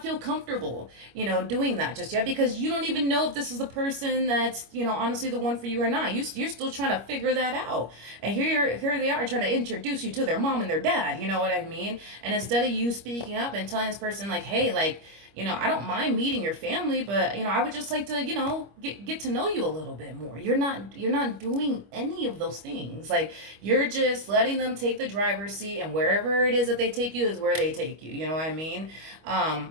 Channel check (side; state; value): left; late; 25 ms